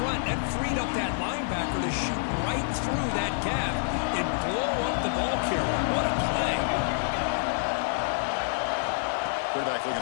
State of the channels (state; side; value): silent; right; 60 dB below the other